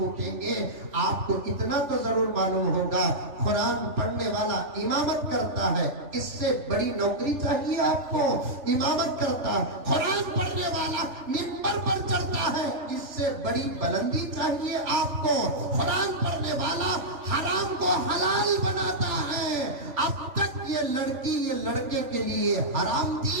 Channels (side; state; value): left; late; 3.4 ms